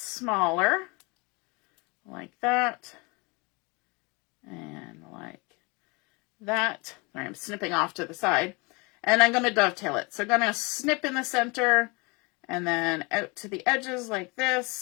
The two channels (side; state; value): right; quieter; 28.3 dB